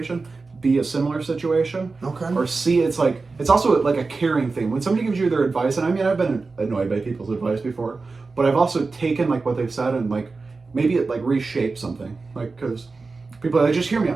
B, a similar situation, Okay. or C, it's also like a caring thing. When somebody gives you their advice, and I mean I've been annoyed by people's advice before, but I've also taken like what they've said and like maybe it like reshaped something, like because people are like, just hear me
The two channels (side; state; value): left; quieter; 4.0 dB